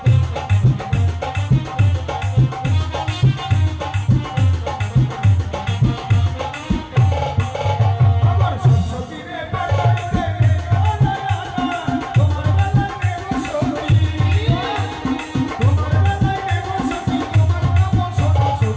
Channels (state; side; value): identical; both; correlation 1.00